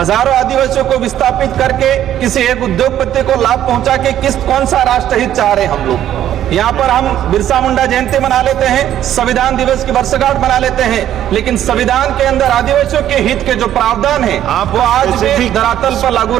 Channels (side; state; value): left; quieter; 11.5 dB